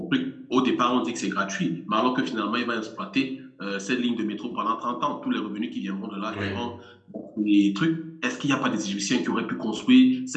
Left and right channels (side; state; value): both; identical; correlation 1.00